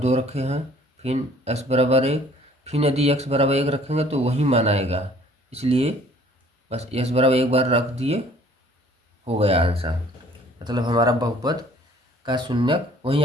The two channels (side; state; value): both; normal; correlation 0.55